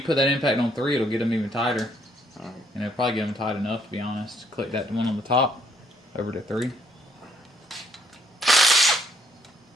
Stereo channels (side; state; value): both; normal; correlation 0.68